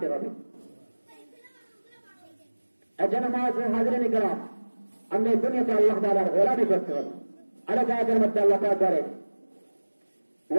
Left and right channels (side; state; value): both; inverted; correlation -1.00